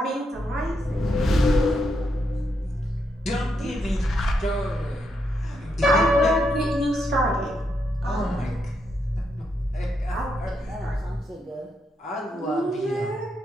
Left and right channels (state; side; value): normal; both; correlation 0.80